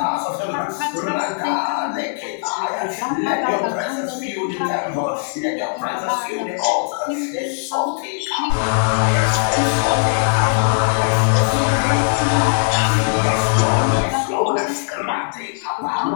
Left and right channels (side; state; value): right; silent; digital silence